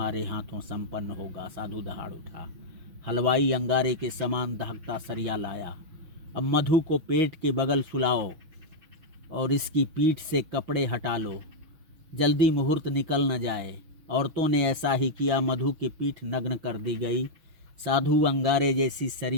हाथों संपन्न होगा। साधु दहाड़ उठा। हलवाई अंगारे के समान दहकता सरिया लाया। अब मधु को पेट के बगल सुलाओ और इसकी पीठ से कपड़े हटा लो, जल्दी मुहूर्त निकल न जाए। औरतों ने ऐसा ही किया। मधु की पीठ नग्न कर दी गई। साधु अंगारे जैसी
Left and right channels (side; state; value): left; late; 6.2 ms